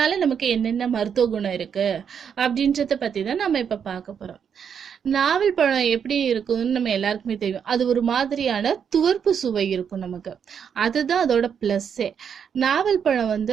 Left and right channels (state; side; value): quieter; left; 7.5 dB